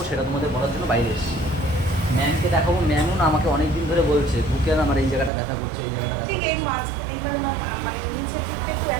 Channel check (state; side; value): drops out; left; at 5.3 s